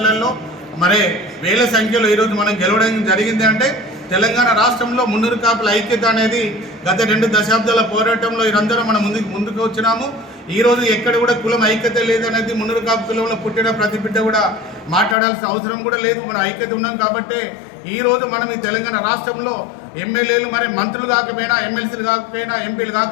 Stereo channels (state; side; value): drops out; right; at 15.2 s